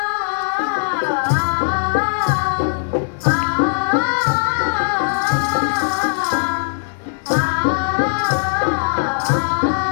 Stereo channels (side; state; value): right; silent; digital silence